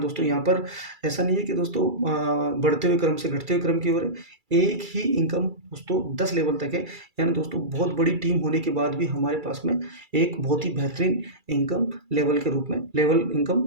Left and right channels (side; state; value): left; late; 2.3 ms